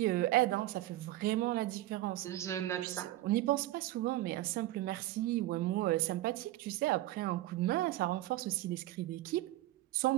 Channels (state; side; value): quieter; left; 15.9 dB